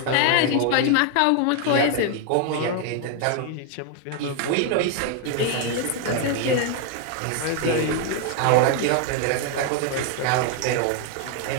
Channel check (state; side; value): different; both; correlation 0.01